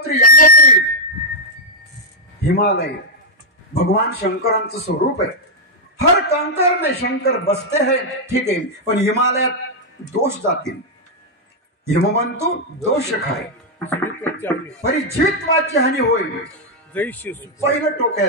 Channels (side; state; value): both; normal; correlation -0.02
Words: यमुनोत्री. हिमालय भगवान शंकरांचं स्वरूप आहे. हर कंकर में शंकर बसते हैं, ठीक आहे, पण हिमालयात दोष जातील. हिमवंतू दोष खाय, परिजीवित्वाची हानी होईल. पहिलं टोक आहे